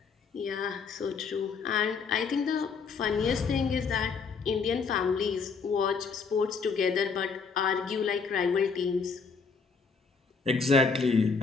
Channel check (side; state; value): right; quieter; 5.2 dB